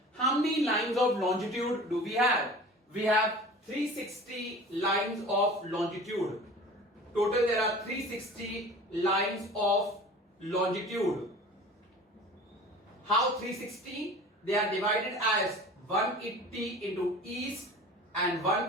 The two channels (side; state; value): both; normal; correlation 0.41